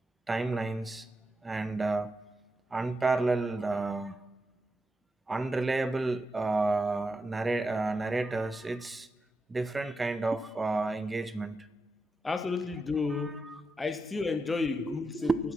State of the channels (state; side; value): normal; both; correlation 0.88